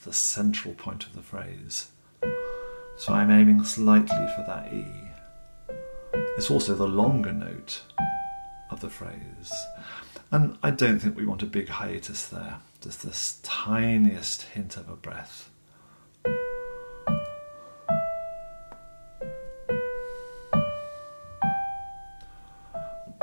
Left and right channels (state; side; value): inverted; both; correlation -1.00